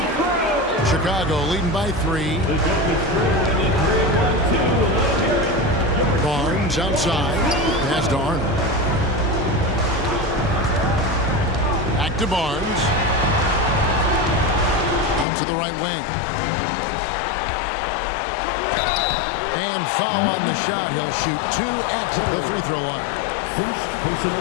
Chicago leading by 3. The goal is scored in the 3-1-2. Barnes outside. Pass to Arnold. Back to Barnes. Out to the right wing. And foul on the shot. He'll shoot 2 at the free throw line. First personal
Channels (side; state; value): right; drops out; at 15.2 s